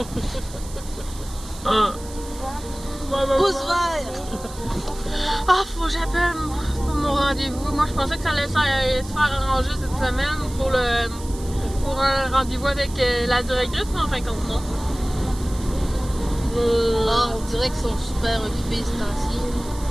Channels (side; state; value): right; noise; hiss, 17 dB below the sound